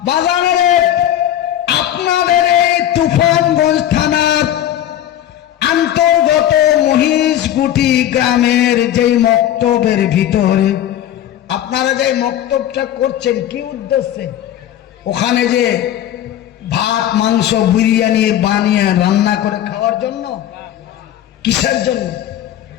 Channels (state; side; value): quieter; right; 11.6 dB